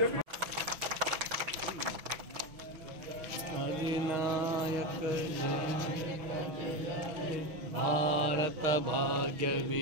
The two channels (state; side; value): late; left; 6.0 ms